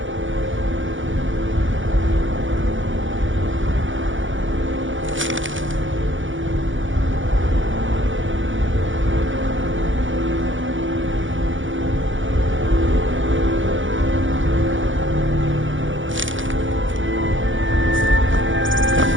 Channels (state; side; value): late; left; 0.56 ms